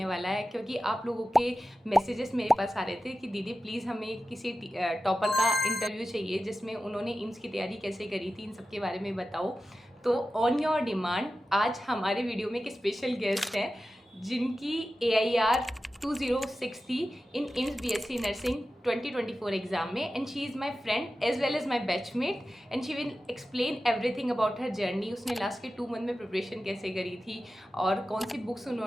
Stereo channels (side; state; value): both; normal; correlation 0.93